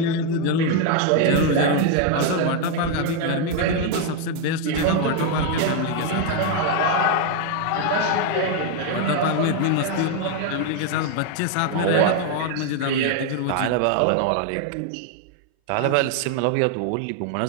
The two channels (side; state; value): both; different; correlation 0.01